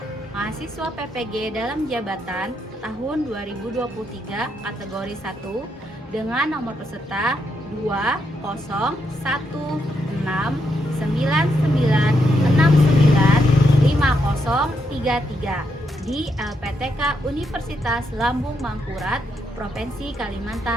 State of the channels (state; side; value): normal; both; correlation 0.79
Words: mahasiswa PPG dalam jabatan tahun 2023 kategori 1 dengan nomor peserta 2019699695033 di LPTK Universitas Lambung Mangkurat, Provinsi